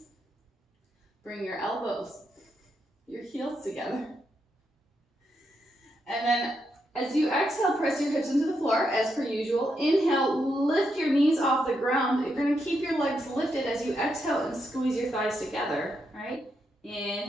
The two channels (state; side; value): normal; both; correlation 0.81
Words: bring your elbows, your heels together. And then as you exhale, press your hips into the floor as per usual. Inhale, lift your knees off the ground. You're gonna keep your legs lifted as you exhale and squeeze your thighs together, right?